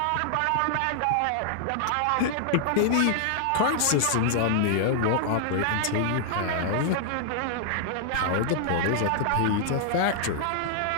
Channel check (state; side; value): different; both; correlation -0.01